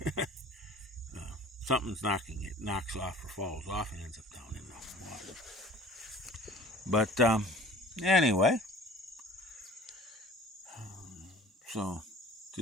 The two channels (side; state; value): both; normal; correlation 0.46